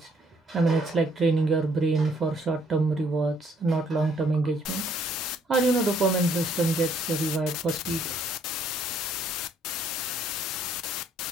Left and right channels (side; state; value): both; normal; correlation 0.66